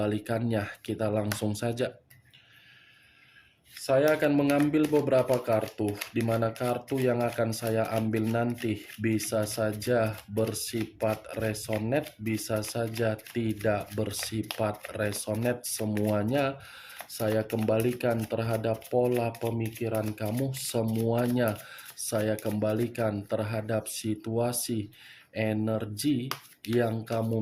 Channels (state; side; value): identical; both; correlation 1.00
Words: Kita langsung saja. Saya akan mengambil beberapa kartu, di mana kartu yang akan saya ambil nanti bisa saja bersifat resonate, bisa saja tidak bersifat resonate. Semuanya saya kembalikan terhadap pola pemikiran kamu, semuanya saya kembalikan terhadap situasi energi yang kamu